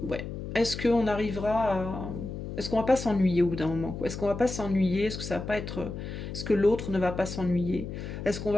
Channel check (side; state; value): left; noise; hum, 7 dB below the sound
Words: Est-ce qu'on arrivera à... Est-ce qu'on va pas s'ennuyer au bout d'un moment, quoi? Est-ce qu'on va pas s'ennuyer? Est-ce que ça va pas être... Est-ce que l'autre ne va pas s'ennuyer? Est-ce qu'on